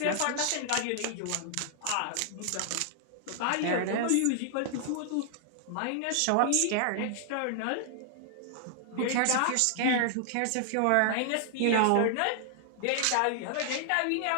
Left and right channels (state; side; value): different; both; correlation 0.00